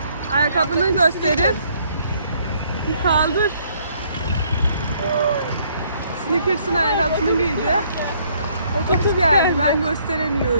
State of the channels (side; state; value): both; inverted; correlation -0.66